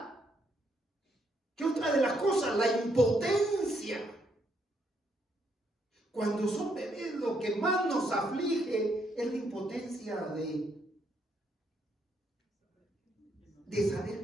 ¿Qué otra de las cosas? La impotencia. Cuando son bebés, lo que más nos aflige es la impotencia de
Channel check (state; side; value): normal; both; correlation 0.74